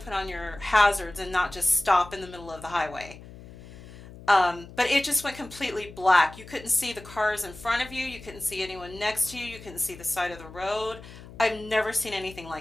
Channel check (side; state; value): left; noise; hum, 17 dB below the sound